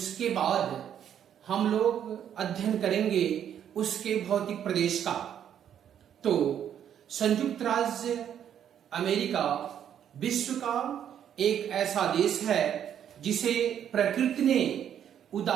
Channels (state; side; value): quieter; left; 9.5 dB